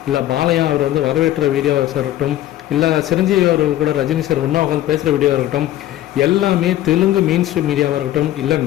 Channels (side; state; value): right; quieter; 13.6 dB